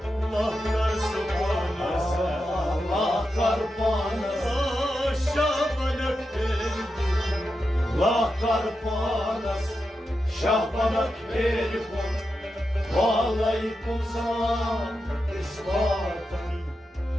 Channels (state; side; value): normal; both; correlation 0.88